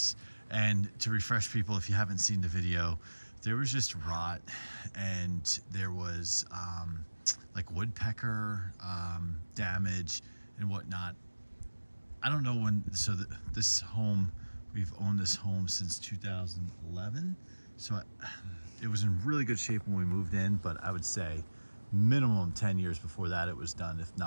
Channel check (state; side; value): inverted; both; correlation -1.00